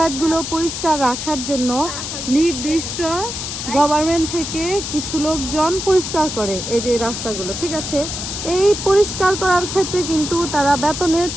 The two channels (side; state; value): left; noise; hiss, 6 dB below the sound